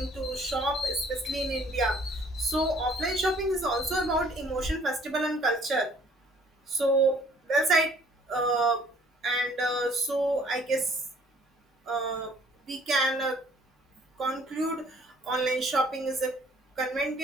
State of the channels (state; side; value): normal; both; correlation 0.58